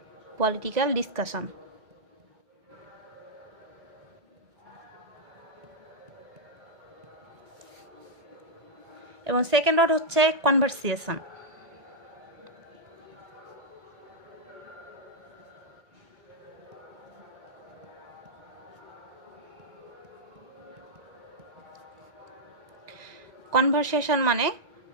পলিটিক্যাল ডিসকাশন। এবং সেকেন্ড ওয়ার্ড হচ্ছে কনভারসেশন। কনভারসেশন মানে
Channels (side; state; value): left; late; 1.8 ms